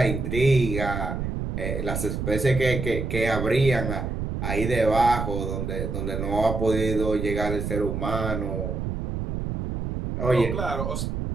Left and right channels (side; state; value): right; noise; rumble, 3 dB below the sound